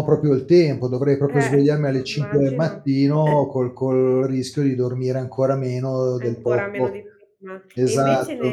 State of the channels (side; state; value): both; identical; correlation 1.00